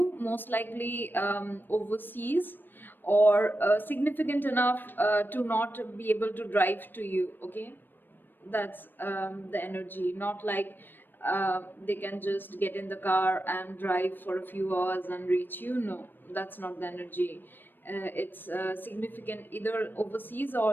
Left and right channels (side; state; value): right; late; 0.094 ms